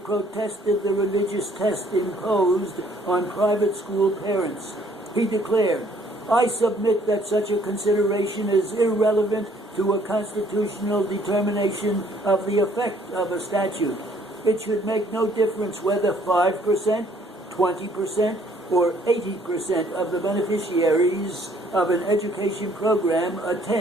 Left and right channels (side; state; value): both; normal; correlation 0.62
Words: the religious test imposed on private school parents. He declared, "I submit that such a consideration is irrelevant to a constitutional determination of the effect of a statute. It should make no difference whether 5%, 20%, or 80% of the beneficiaries of an education program